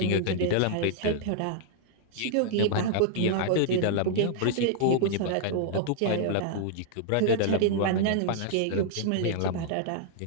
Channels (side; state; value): both; different; correlation -0.01